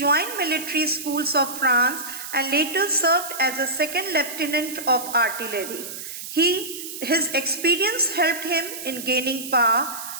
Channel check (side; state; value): right; noise; hiss, 9 dB below the sound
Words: military schools of France and later served as a second lieutenant of artillery. His experience helped him in gaining power.